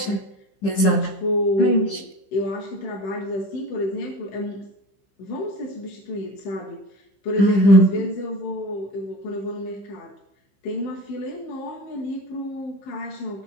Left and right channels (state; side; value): late; right; 15 ms